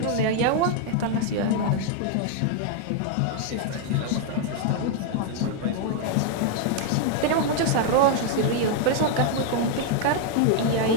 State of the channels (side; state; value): both; different; correlation 0.00